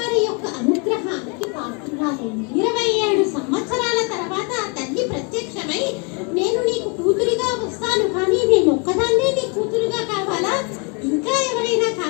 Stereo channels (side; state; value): right; quieter; 32.6 dB